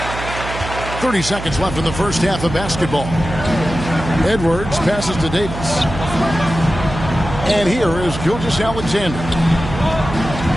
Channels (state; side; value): noise; right; hum, 9 dB below the sound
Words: 30 seconds left in the first half of basketball. Edwards passes to Davis. And here is Gilgeous-Alexander.